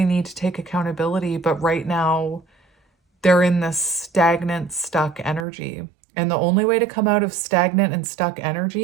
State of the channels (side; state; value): left; drops out; at 5.5 s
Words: need to take accountability, but right now they're in this stagnant, stuck energy. And the only way to come out of stagnant and stuck